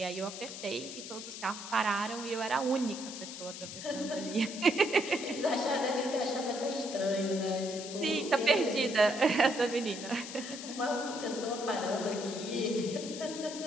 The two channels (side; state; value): left; noise; hiss, 10 dB below the sound